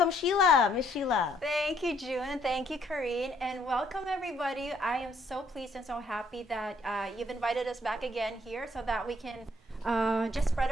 Sheila, Miss Sheila. Thank you, June, and thank you, Karine, and welcome everybody. I am so pleased and so happy that you've invited us back again here so that we can just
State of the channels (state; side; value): normal; both; correlation 0.67